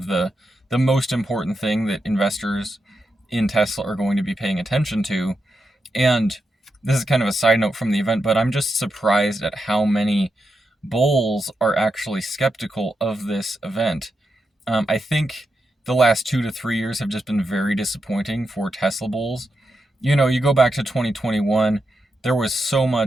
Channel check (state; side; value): normal; both; correlation 0.86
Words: the most important thing that investors in Tesla are going to be paying attention to. And this is kind of a side note from the event, but I'm just surprised at how many bulls are actually skeptical of this event. I think the last 2 to 3 years have just been very disappointing for Tesla bulls. You go back to 2021, there was so